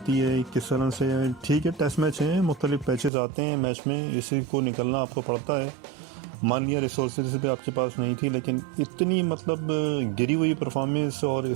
है किस तरह से। ठीक है, टेस्ट मैच हैं, मुख्तलिफ पैचेस आते हैं मैच में, इसी को निकलना आपको पड़ता है। मान लिया रिसोर्सेज भी आपके पास नहीं थी, लेकिन इतनी मतलब गिरी हुई परफॉर्मेंस और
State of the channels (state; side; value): drops out; left; at 3.1 s